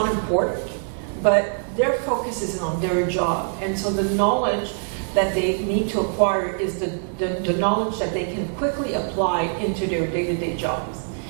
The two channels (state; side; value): silent; left; digital silence